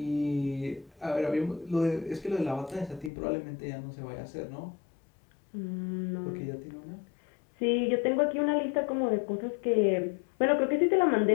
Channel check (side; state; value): right; drops out; at 3.1 s